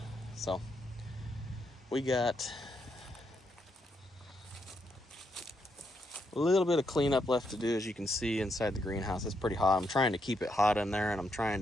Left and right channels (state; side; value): normal; both; correlation 0.79